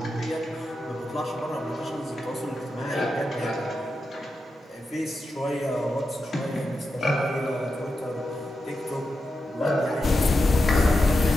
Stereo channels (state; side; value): normal; both; correlation 0.88